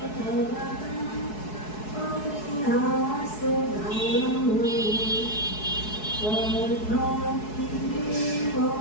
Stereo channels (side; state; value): right; late; 4.7 ms